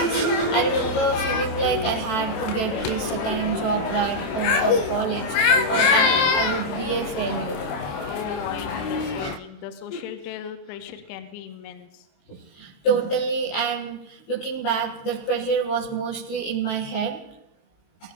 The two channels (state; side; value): late; right; 28 ms